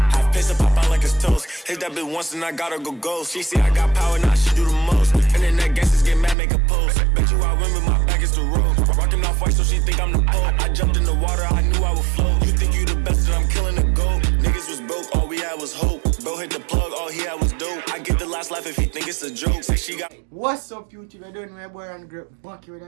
Half piss and pop out like it's toast. Hit that bitch once and I gotta go ghost. She see I got power, now she do the most. Internet gangsters get mad, make a post. Bet you I win with my back against the road. Rockin' off white so she think I'm the Pope. I jumped in the water, I knew I would float. You think you the best and I'm killing the goat. Niggas was broke, all we had was hope. Bro hit the plug, all he had was dope. I get the last laugh if he think it's a joke. Say she got. What's up, YouTube? We're doing my boy RonDaGreat back here with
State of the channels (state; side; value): drops out; left; at 6.4 s